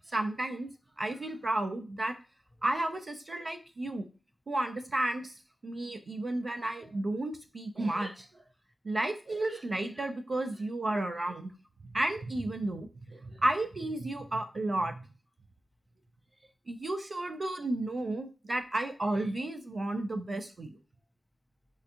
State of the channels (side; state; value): both; normal; correlation 0.94